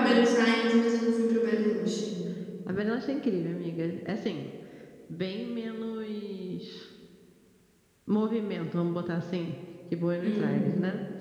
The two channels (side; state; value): both; identical; correlation 1.00